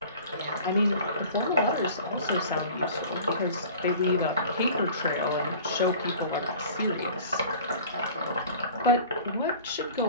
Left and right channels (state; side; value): inverted; both; correlation -0.44